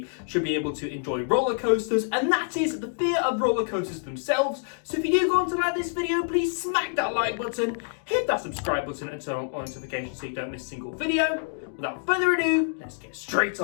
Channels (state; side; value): silent; right; digital silence